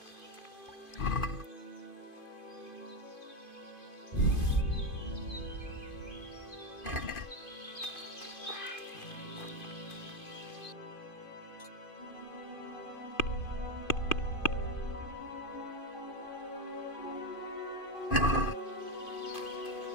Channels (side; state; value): right; late; 2.5 ms